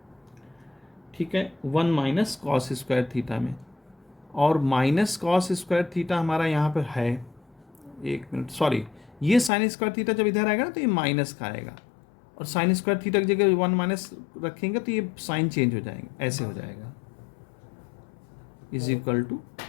ठीक है, 1 माइनस कॉस स्क्वायर थीटा में, और माइनस कॉस स्क्वायर थीटा हमारा यहाँ पर है, एक मिनट सॉरी, ये साइन स्क्वायर थीटा जब इधर आएगा ना तो ये माइनस का आएगा, और साइन स्क्वायर थीटा की जगह 1 माइनस रखेंगे तो ये साइन चेंज हो जाएंगे, ऐसे हो जाएगा इज इक्वल टू,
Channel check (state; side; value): drops out; right; at 9.5 s